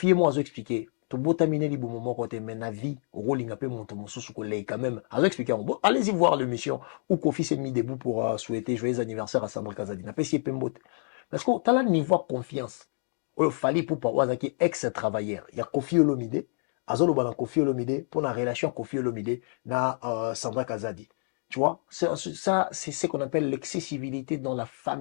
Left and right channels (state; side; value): silent; right; 59 dB below the other